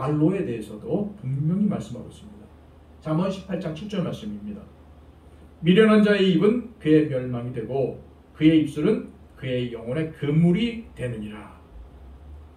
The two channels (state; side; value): identical; both; correlation 1.00